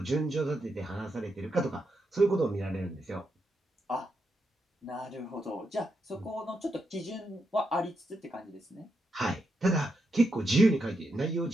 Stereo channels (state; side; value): normal; both; correlation 0.83